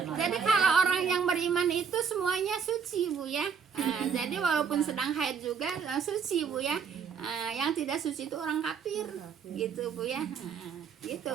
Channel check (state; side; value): quieter; left; 6.5 dB